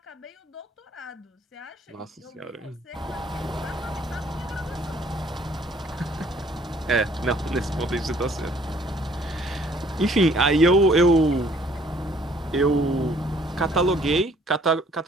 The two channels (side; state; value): both; normal; correlation 0.60